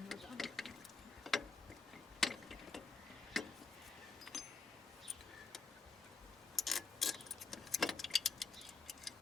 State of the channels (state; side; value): quieter; right; 4.5 dB